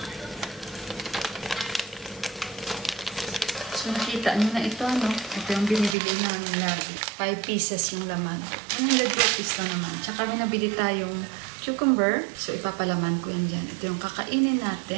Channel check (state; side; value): drops out; left; at 6.0 s